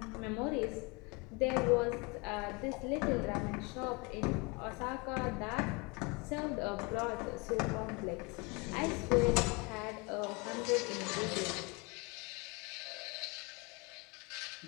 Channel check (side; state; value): right; quieter; 28.0 dB